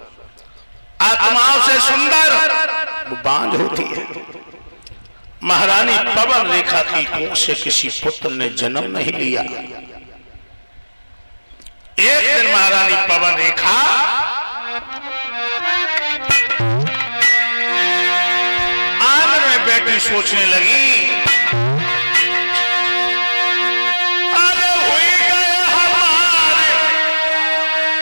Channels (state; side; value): inverted; both; correlation -1.00